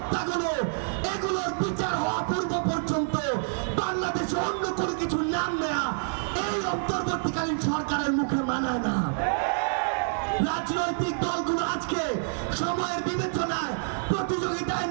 এগুলোর বিচার হওয়া পূর্ব পর্যন্ত বাংলাদেশে অন্য কোনো কিছু নাম নেয়া এই অন্তর্বর্তীকালীন সরকারের মুখে মানায় না। রাজনৈতিক দলগুলো আজকে সময়ের বিবেচনায় প্রতিযোগিতায়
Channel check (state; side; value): silent; left; digital silence